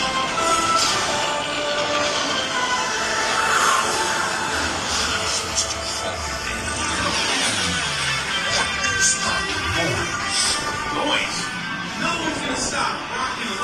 Noise. No one's gonna stop rock and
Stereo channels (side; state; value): both; identical; correlation 1.00